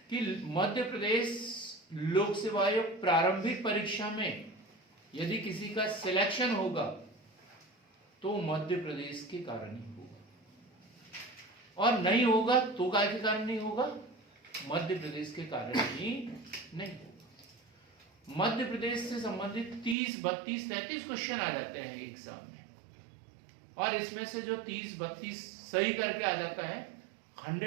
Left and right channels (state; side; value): drops out; left; at 20.0 s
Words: कि मध्य प्रदेश लोक सेवा आयोग प्रारंभिक परीक्षा में यदि किसी का सिलेक्शन होगा तो मध्य प्रदेश के कारण ही होगा, और नहीं होगा तो काय के कारण नहीं होगा, मध्य प्रदेश के कारण ही नहीं होगा। मध्य प्रदेश से संबंधित 30, 32, 33 क्वेश्चन आ जाते हैं एग्जाम में, और इसमें से जो 30, 32 सही करके आ जाता है